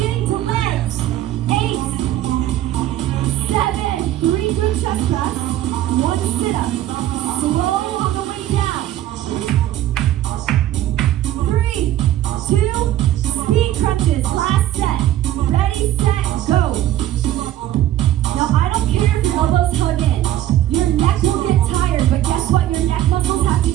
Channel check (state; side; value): quieter; left; 13.0 dB